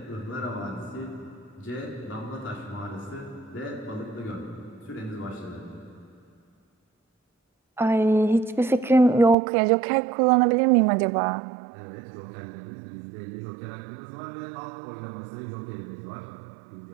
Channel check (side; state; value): left; drops out; at 9.3 s